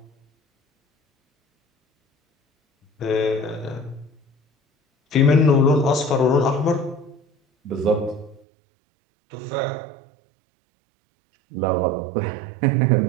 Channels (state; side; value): drops out; left; at 8.4 s